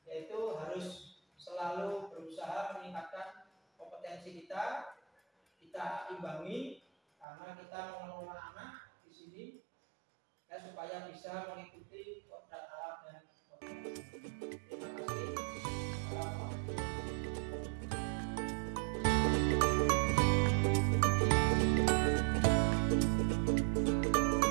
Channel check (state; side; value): drops out; left; at 7.2 s